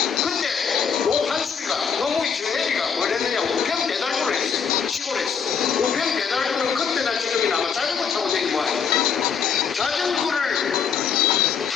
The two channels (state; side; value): quieter; right; 6.6 dB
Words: 근데 노판수리가 노무희 저 애비가 뭘 했느냐, 우편 배달부를 했어요. 시골에서. 우편 배달부는 그때나 지금이나 아마 자전거 타고 다니는 모양이에요. 자전거를